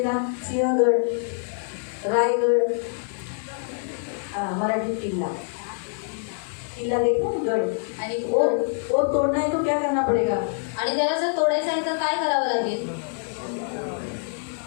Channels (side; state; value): right; silent; digital silence